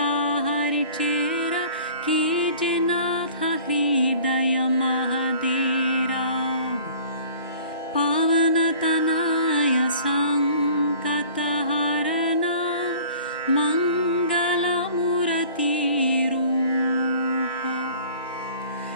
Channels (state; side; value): inverted; both; correlation -0.48